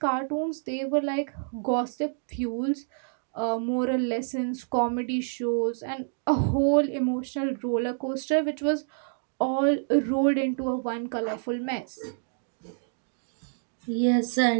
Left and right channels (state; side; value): silent; left; digital silence